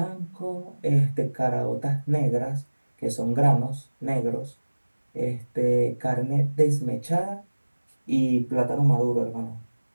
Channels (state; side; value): inverted; both; correlation -1.00